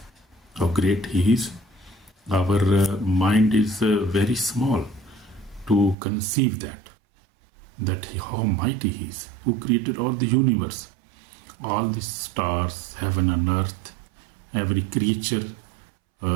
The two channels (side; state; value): left; drops out; at 6.0 s